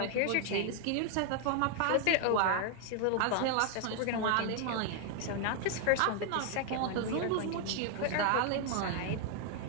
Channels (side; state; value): both; different; correlation 0.00